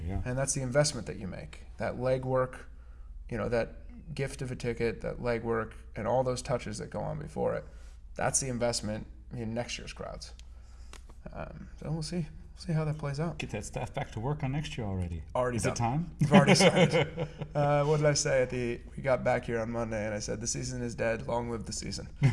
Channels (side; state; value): both; identical; correlation 1.00